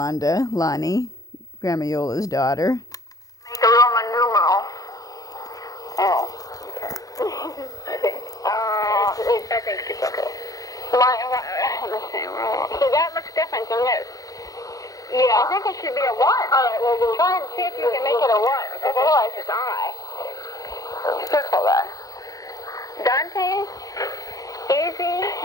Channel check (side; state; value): right; late; 0.17 ms